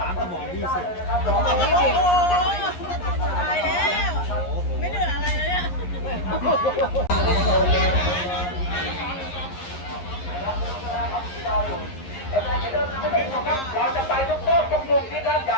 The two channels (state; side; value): late; right; 11 ms